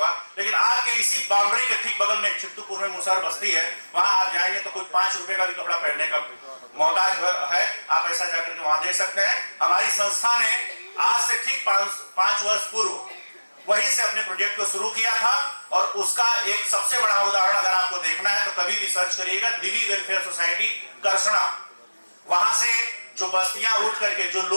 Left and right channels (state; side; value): inverted; both; correlation -1.00